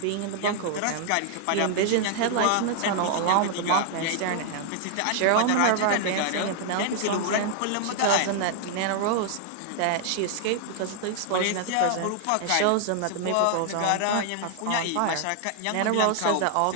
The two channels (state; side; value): different; both; correlation 0.00